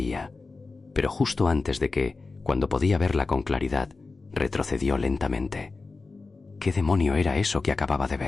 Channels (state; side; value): quieter; right; 3.9 dB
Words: pero justo antes de que, cuando podía verla con claridad, retrocedió lentamente. ¿Qué demonio era eso que acababa de